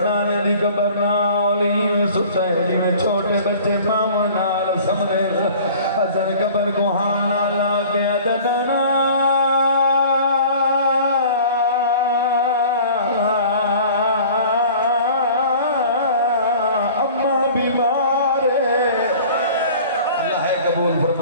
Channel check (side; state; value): both; inverted; correlation -0.46